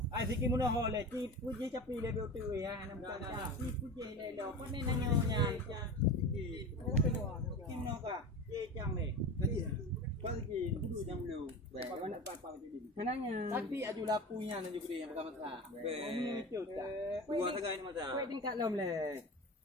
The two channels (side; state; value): both; normal; correlation 0.30